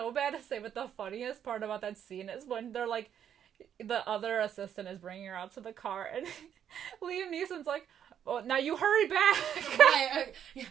bad to say, but the funniest part about that scene is when they're, like, the other assistant is bringing her out to the car, and Liam Neeson's like, "Oh, now you hurry back." Right,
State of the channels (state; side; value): quieter; left; 9.2 dB